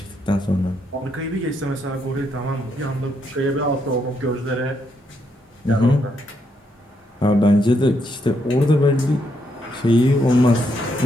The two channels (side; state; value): both; normal; correlation 0.77